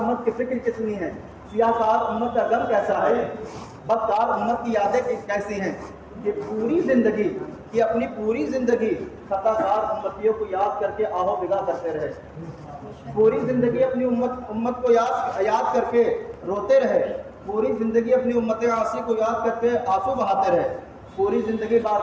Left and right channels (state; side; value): identical; both; correlation 1.00